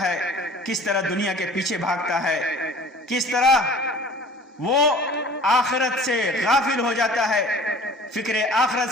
کس طرح دنیا کے پیچھے بھاگتا ہے، کس طرح وہ آخرت سے غافل ہو جاتا ہے، فکر آخرت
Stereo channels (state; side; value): normal; both; correlation 0.46